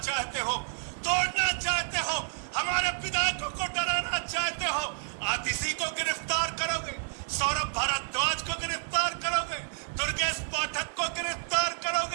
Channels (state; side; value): silent; left; digital silence